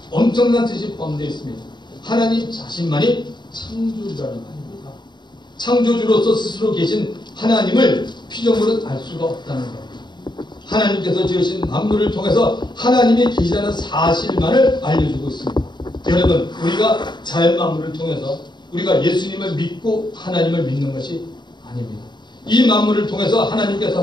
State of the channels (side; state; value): right; late; 0.22 ms